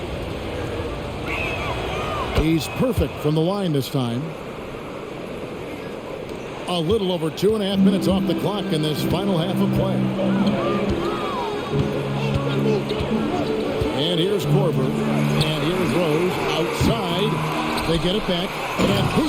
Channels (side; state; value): both; identical; correlation 1.00